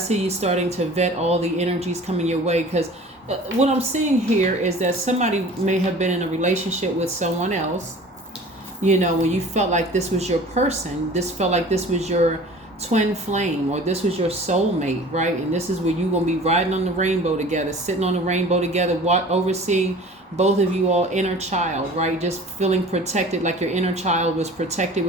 you starting to vet all the energies coming your way, because what I'm seeing here is that somebody may have been in a relationship with someone else, when you felt like this was your person, this felt like this was your twin flame, or this was your soulmate, right? And this is where you're going to be riding on the rainbow together, sitting on the rainbow together, overseeing both of you all inner child, right? Just feeling protected, like your inner child was protected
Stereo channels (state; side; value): normal; both; correlation 0.44